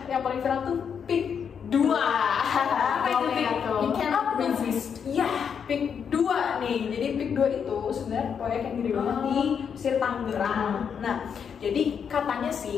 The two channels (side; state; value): right; quieter; 7.2 dB